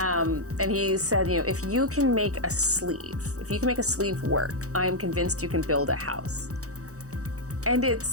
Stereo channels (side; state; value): left; late; 0.65 ms